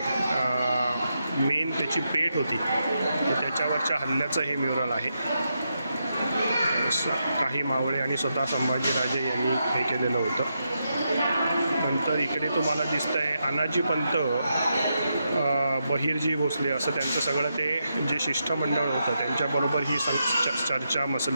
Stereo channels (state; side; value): inverted; both; correlation -0.84